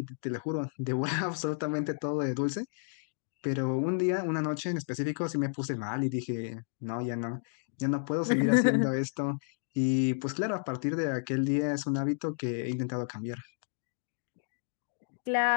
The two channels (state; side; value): silent; right; digital silence